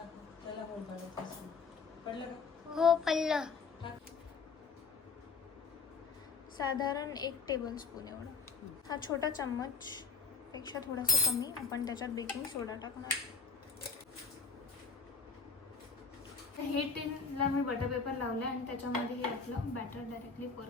त्याला पडलं का? हो पडलं. साधारण 1 टेबलस्पून एवढं. हा छोटा चम्मच पेक्षा थोडासा कमी आपण त्याच्यात बेकिंग सोडा टाकणार. हे टिनला मी बटर पेपर लावलं आणि त्याच्यामध्ये हे आपलं बॅटर डायरेक्टली पोर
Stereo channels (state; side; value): quieter; right; 4.9 dB